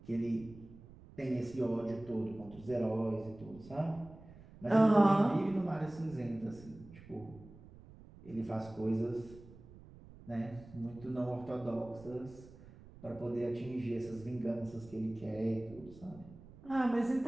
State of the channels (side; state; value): right; noise; rumble, 19 dB below the sound